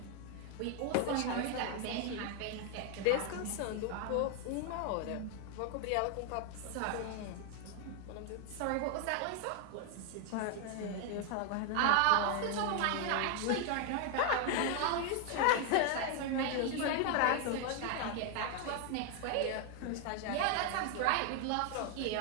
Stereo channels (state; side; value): different; both; correlation 0.01